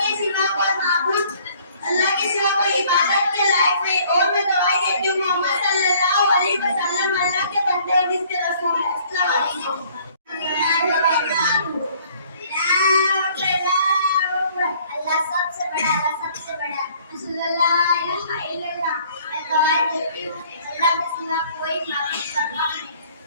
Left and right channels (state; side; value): inverted; both; correlation -0.58